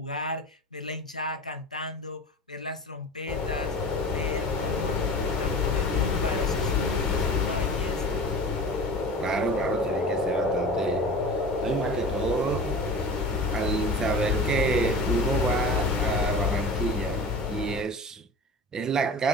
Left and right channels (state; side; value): normal; both; correlation 0.35